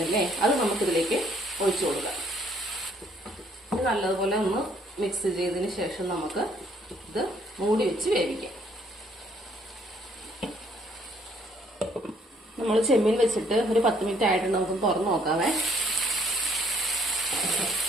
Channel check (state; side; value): normal; both; correlation 0.65